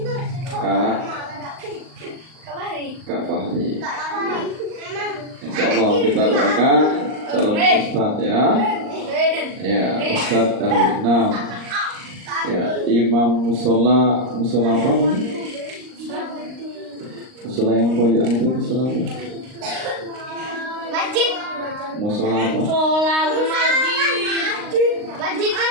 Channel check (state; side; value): late; left; 38 ms